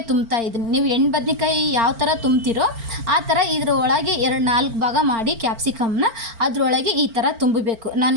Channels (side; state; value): left; late; 4.4 ms